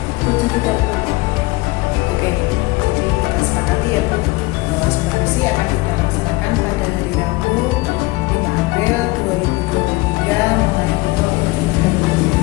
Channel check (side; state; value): right; quieter; 21.8 dB